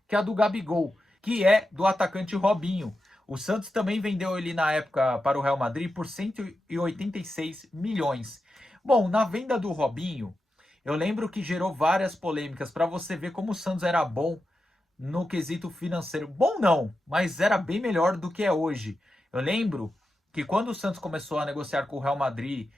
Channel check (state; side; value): normal; both; correlation 0.89